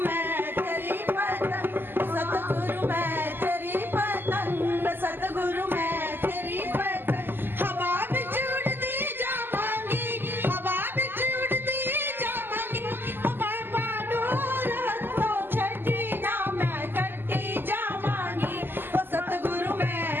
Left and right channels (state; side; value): late; left; 0.097 ms